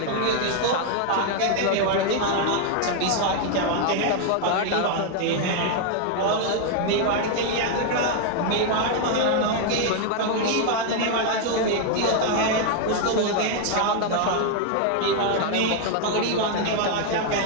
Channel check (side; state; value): both; different; correlation 0.00